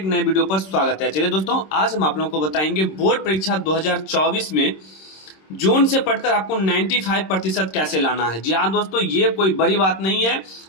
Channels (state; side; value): late; right; 26 ms